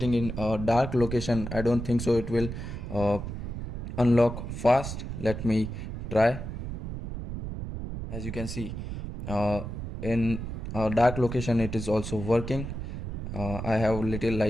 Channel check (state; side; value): noise; right; rumble, 6 dB below the sound